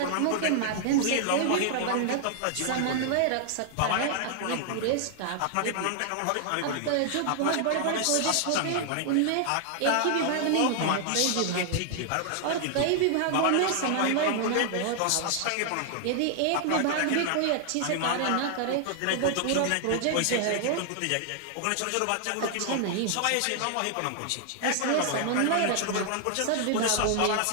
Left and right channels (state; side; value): different; both; correlation 0.00